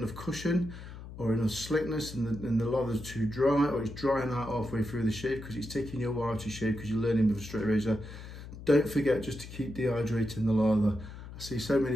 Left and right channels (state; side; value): noise; left; hum, 13 dB below the sound